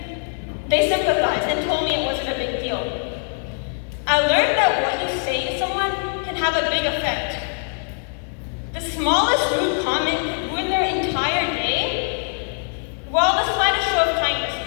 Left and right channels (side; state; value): right; silent; digital silence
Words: they sympathized and told me it wasn't a big deal. I learned that what you say to someone can have a big effect. The smallest rude comment could ruin their entire day, while the slightest show of kindness